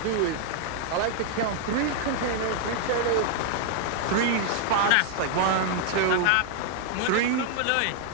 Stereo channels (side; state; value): both; different; correlation 0.00